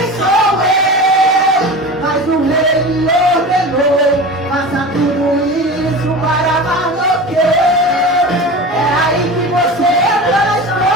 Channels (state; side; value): normal; both; correlation 0.32